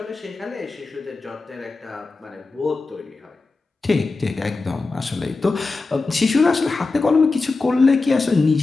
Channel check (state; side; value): quieter; right; 3.8 dB